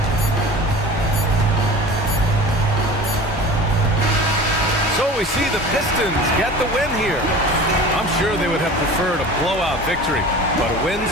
So we see the Pistons get the win here. I'm sure they would have preferred a blowout victory, but a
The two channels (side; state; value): both; normal; correlation 0.38